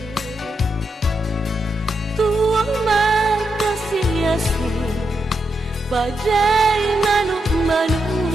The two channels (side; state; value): both; normal; correlation 0.83